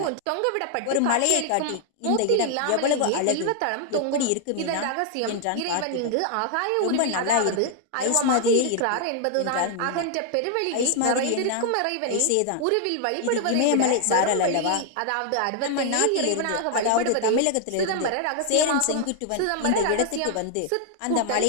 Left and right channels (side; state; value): both; different; correlation 0.00